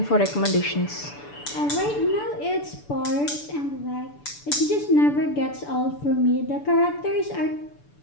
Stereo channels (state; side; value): late; right; 6.9 ms